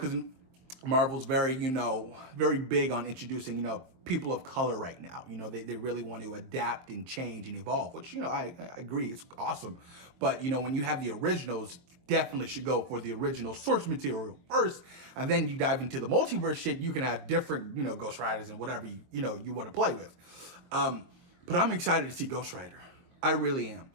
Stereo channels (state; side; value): late; left; 23 ms